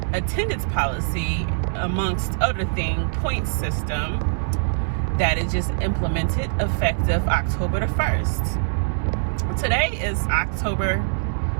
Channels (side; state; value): left; silent; digital silence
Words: attendance policy, amongst other things, point system that is just implemented effective October the 1st. Today is October